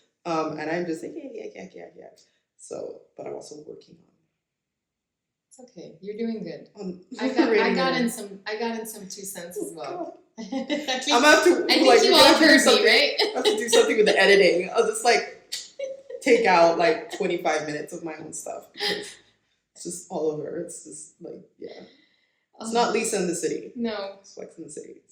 and I'm just like yeah. So, but I'm also working on. It's okay. You're doing good. I got in some 2 cents as well. I think you all heard me, right? I have to do something with the editing. I'll just like take out like 25 minutes of my own stuff because it's just all over. It's just like it's not Lisa in the City. No, it's Flex in the City.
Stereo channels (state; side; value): identical; both; correlation 1.00